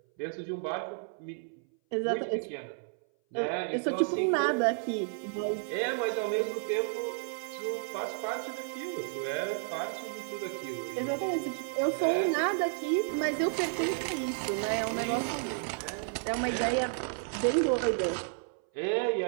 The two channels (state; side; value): silent; left; 57 dB below the other